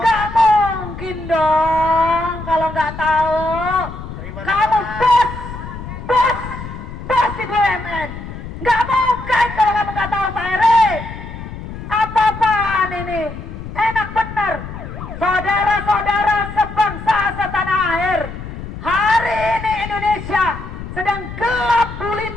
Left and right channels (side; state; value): left; noise; rumble, 10 dB below the sound